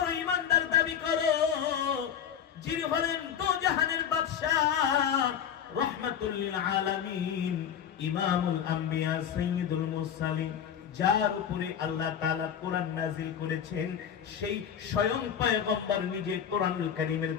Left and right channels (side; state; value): right; quieter; 8.7 dB